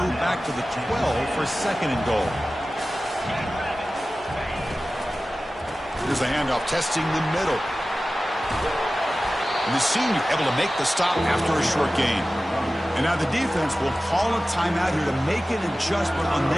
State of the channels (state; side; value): normal; both; correlation 0.96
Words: moved back to the 12 for 2nd and goal. Here's the handoff, testing the middle. And the senior able to make the stop after a short gain. And now the defense will call a timeout here to make an adjustment on